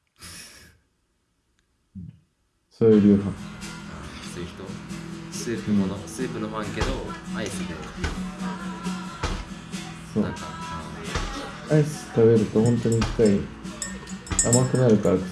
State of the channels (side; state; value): both; identical; correlation 1.00